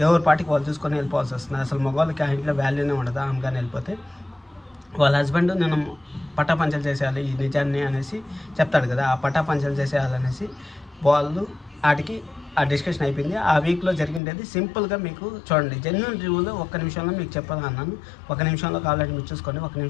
ఎవరి పాటికి వాళ్ళు చూసుకొని వెళ్ళిపోవాల్సి వస్తుంది. అసలు మగవాళ్ళకి ఆ ఇంట్లో వాల్యూనే ఉండదు. ఆమె కానీ వెళ్ళిపోతే వాళ్ళ హస్బెండ్ నేను పటాపంచలు చేసేయాలి ఈ నిజాన్ని అనేసి చెప్తాడు కదా. ఆ పటాపంచలు చేసేయాలనేసి వాళ్ళు వాటికి ఆ డిస్కషన్ అయిపోయింది. ఆ వీక్లో జరిగిండేది సింపుల్గా మీకు చూడండి. జెన్యూన్ రివ్యూలో 1 నిమిషంలో మీకు చెప్పాలన్నాను. 1 నిమిషంలో ఆల్రెడీ మీరు చూసుకోండి. 1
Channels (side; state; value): right; drops out; at 14.2 s